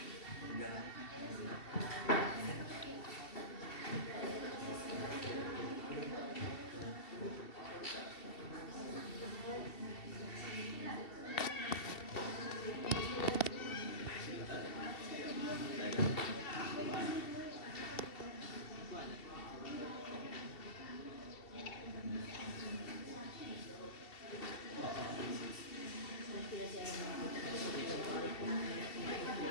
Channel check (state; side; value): late; right; 2.7 ms